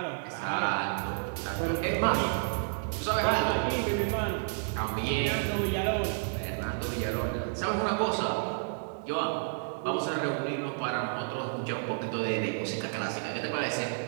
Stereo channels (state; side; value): silent; left; 57 dB below the other